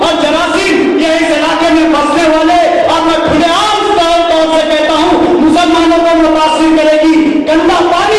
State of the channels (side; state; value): both; identical; correlation 1.00